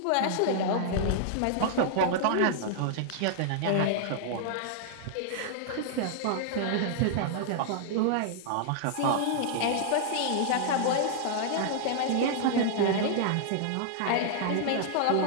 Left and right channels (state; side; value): different; both; correlation -0.01